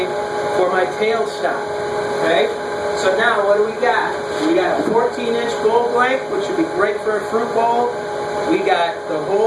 for my tailstock. Okay? So now what do we got? We got a 14-inch bowl blank, which would be great for a fruit bowl. We got the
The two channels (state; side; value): identical; both; correlation 1.00